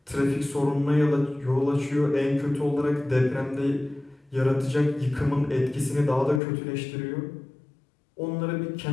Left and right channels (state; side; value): drops out; right; at 6.4 s